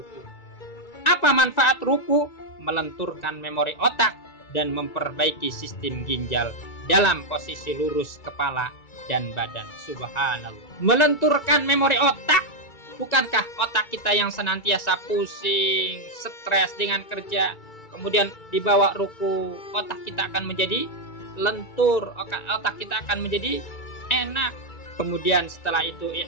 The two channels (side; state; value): right; late; 1.9 ms